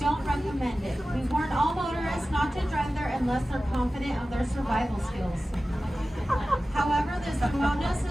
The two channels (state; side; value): normal; both; correlation 0.95